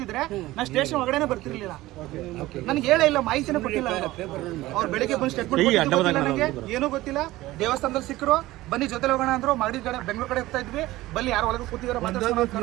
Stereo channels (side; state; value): left; quieter; 17.5 dB